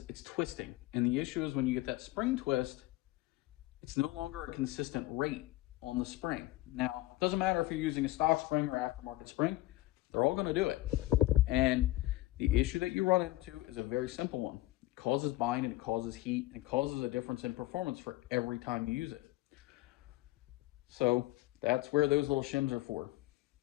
it's twisting. And the issue is when you get that spring twist, it's no longer a consistent rate on the spring. Now, it doesn't matter if you're using a stock spring or aftermarket spring, they're all going to do it. And the issue that you run into is a very simple one. It causes bind, and it causes heat, and it causes a difference in performance for every time you use it. So that's where those little shims are for.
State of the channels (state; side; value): quieter; right; 17.9 dB